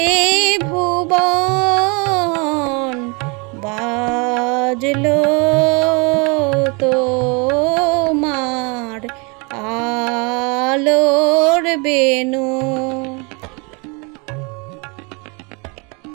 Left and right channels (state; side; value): quieter; left; 31.5 dB